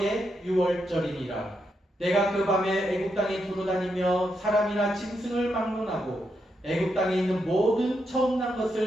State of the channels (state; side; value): normal; both; correlation 0.82